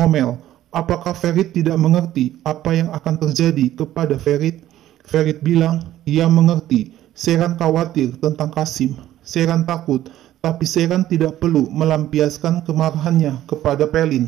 apakah Ferit tidak mengerti apa yang akan terjadi kepada Ferit? Ferit bilang, ia mengerti. Sheran khawatir tentang Kasim. Sheran takut, tapi Sheran tidak perlu melampiaskan kemarahannya kepada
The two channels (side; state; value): left; quieter; 13.2 dB